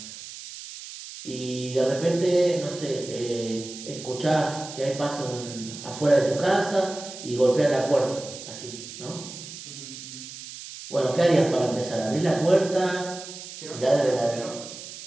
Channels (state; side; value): noise; right; hiss, 12 dB below the sound